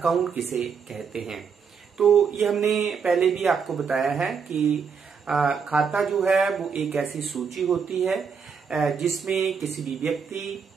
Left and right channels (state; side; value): quieter; left; 6.1 dB